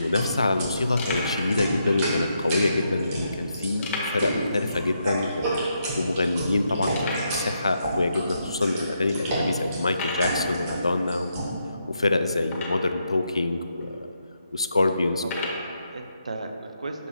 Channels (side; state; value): both; inverted; correlation -0.80